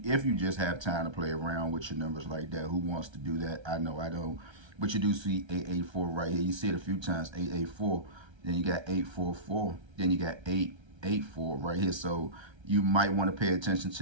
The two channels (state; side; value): late; left; 1.3 ms